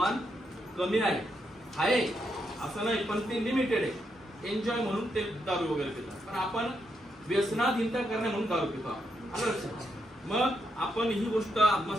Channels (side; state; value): both; normal; correlation 0.80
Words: कमी आहे असं नाही, पण ते लिमिटेड आहे. एन्जॉय म्हणून ते दारू वगैरे पितात, पण आपण व्यसनाधीनता करणे म्हणून दारू पितो. मग आपण ही गोष्ट